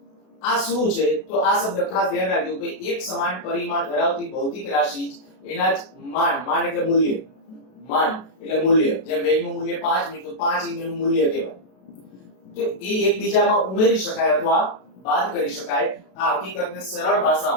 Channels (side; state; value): right; late; 32 ms